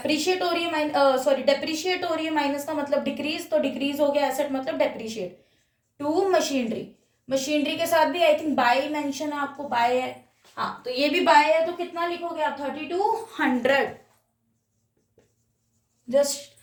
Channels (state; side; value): identical; both; correlation 1.00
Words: हो रही है, सॉरी डेप्रिशिएट हो रही है, माइनस का मतलब डिक्रीज, तो डिक्रीज हो गया एसेट मतलब डेप्रिशिएट। टू मशीनरी, मशीनरी के साथ भी आई थिंक बाय मेंशन है, आपको बाय है, हाँ तो ये भी बाय है, तो कितना लिखोगे आप 3200, just